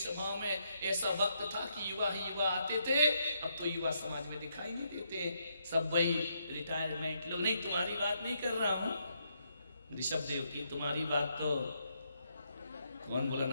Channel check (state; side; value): inverted; both; correlation -0.77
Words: में ऐसा वक्त था कि युवा ही युवा आते थे, अब तो युवा समाज में दिखाई नहीं देते, सब वही रिटायरमेंट लोग। नहीं, तुम्हारी बात नहीं कर रहा हूं ऋषभ देव की, तुम्हारी बात तो कौन बोला